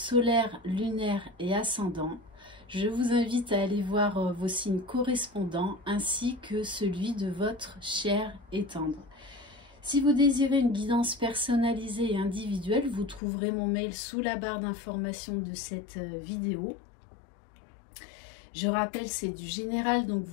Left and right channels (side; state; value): right; drops out; at 13.2 s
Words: lunaire et ascendant. Je vous invite à aller voir vos signes correspondants ainsi que celui de votre cher et tendre. Si vous désirez une guidance personnalisée et individuelle, vous trouverez mon mail sous la barre d'information de cette vidéo. Je rappelle, c'est du général, donc